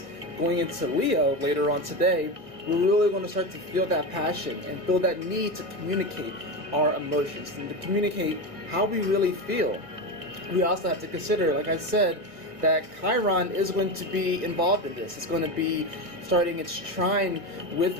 going into Leo later on today. We're really going to start to feel that passion and feel that need to communicate our emotions and to communicate how we really feel. We also have to consider, like I said, that Chiron is going to be involved in this. It's going to be starting its trine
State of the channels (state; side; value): late; left; 1.8 ms